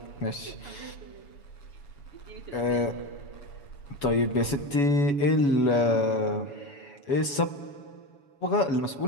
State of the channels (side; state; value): right; late; 7.1 ms